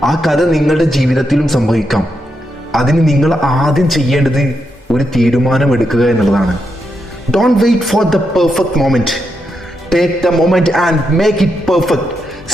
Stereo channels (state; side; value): normal; both; correlation 0.83